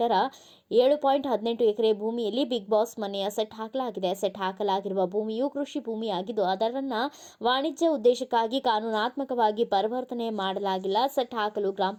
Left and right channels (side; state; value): both; identical; correlation 1.00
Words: 7.18 ಎಕರೆ ಭೂಮಿಯಲ್ಲಿ ಬಿಗ್ ಬಾಸ್ ಮನೆಯ ಸೆಟ್ ಹಾಕಲಾಗಿದೆ. ಸೆಟ್ ಹಾಕಲಾಗಿರುವ ಭೂಮಿಯು ಕೃಷಿ ಭೂಮಿಯಾಗಿದ್ದು, ಅದರನ್ನು ವಾಣಿಜ್ಯ ಉದ್ದೇಶಕ್ಕಾಗಿ ಕಾನೂನಾತ್ಮಕವಾಗಿ ಪರಿವರ್ತನೆ ಮಾಡಲಾಗಿಲ್ಲ. ಸೆಟ್ ಹಾಕಲು ಗ್ರಾಮ